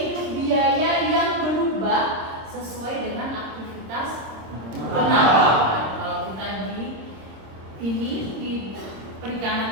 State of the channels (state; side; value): late; left; 26 ms